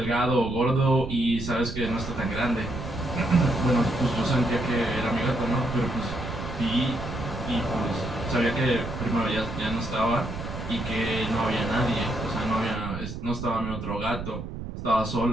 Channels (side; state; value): right; noise; rumble, 8 dB below the sound